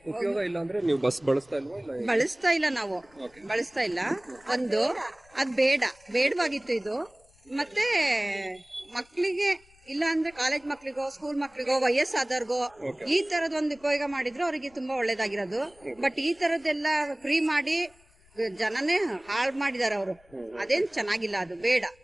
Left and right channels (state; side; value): noise; left; rumble, 30 dB below the sound